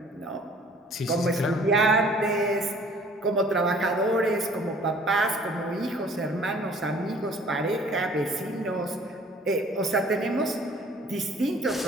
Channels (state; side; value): normal; both; correlation 0.53